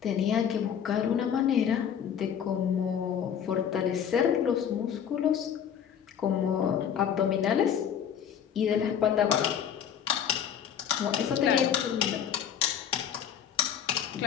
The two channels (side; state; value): right; quieter; 8.6 dB